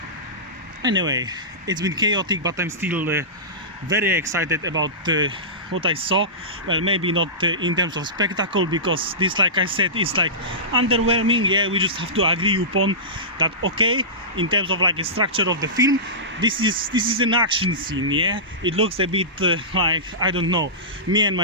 Anyway, it's been chaotic, but I'm still very excited about what I saw. Well, maybe not in terms of spectacle, because this, like I said, is like underwhelming. Yeah, we just have to agree upon that. Okay, in terms of, like, a structure of the film, this is an action scene. Yeah, it looks a bit like, I don't know, me and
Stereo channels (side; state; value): both; normal; correlation -0.19